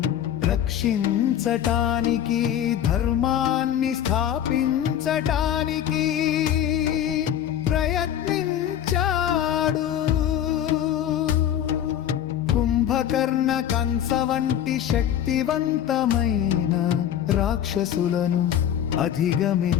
రక్షించటానికి ధర్మాన్ని స్థాపించటానికి ప్రయత్నించాడు. కుంభకర్ణ కంస వంటి శక్తివంతమైన రాక్షసులను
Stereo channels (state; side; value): quieter; right; 10.3 dB